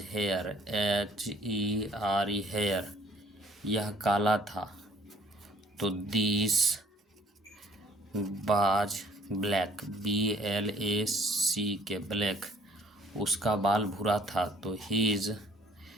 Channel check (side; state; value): both; normal; correlation 0.58